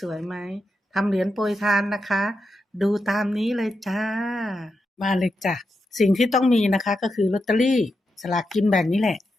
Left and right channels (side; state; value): both; normal; correlation 0.87